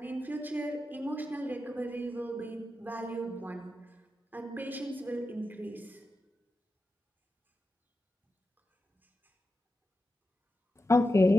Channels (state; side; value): normal; both; correlation 0.90